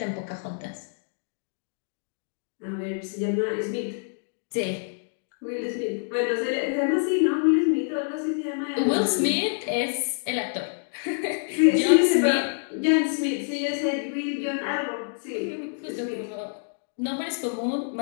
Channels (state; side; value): silent; right; digital silence